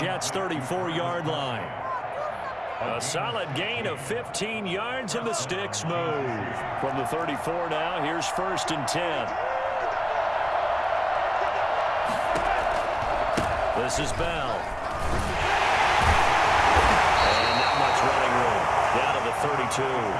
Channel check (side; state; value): both; identical; correlation 1.00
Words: 34-yard line. A solid gain of 15 yards and the sticks move. From the 34 now, here's 1st and 10. This is Bell. And not much running room. Down to the 32.